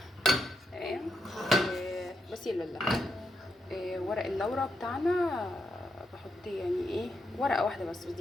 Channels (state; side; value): normal; both; correlation 0.81